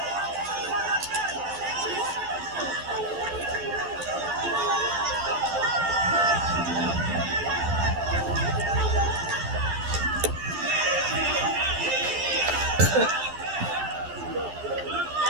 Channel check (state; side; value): late; left; 12 ms